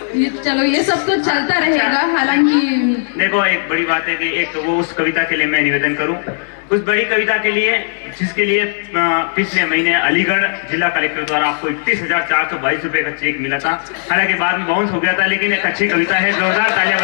ये चलो, ये सब तो चलता रहेगा। हालांकि देखो एक बड़ी बात है कि एक तो वो उस कविता के लिए मैं निवेदन करूं, उस बड़ी कविता के लिए जिसके लिए पिछले महीने अलीगढ़ जिला कलेक्टर द्वारा आपको 31,422 रुपए का चेक मिला था। हालांकि बाद में बाउंस हो गया था, लेकिन एक अच्छी कविता है, जोरदार तालियां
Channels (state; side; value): silent; right; 69 dB below the other